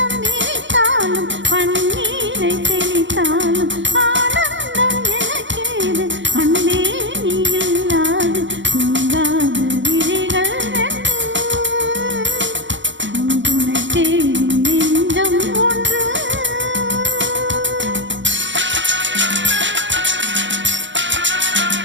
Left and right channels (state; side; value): late; left; 0.54 ms